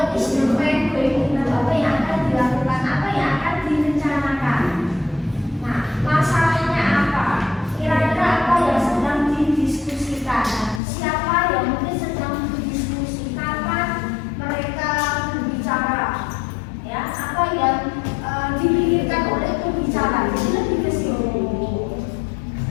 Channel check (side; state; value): right; drops out; at 10.8 s